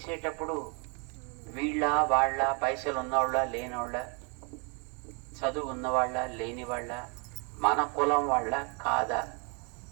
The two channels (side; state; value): left; quieter; 34.9 dB